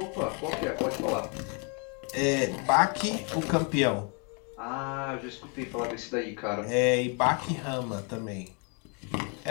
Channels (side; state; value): right; quieter; 35.7 dB